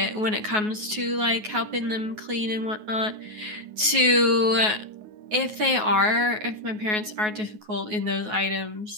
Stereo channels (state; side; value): late; left; 9.4 ms